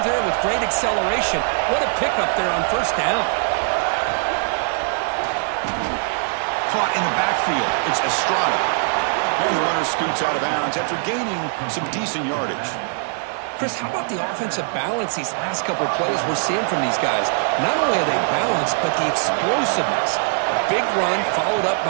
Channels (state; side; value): silent; left; 58 dB below the other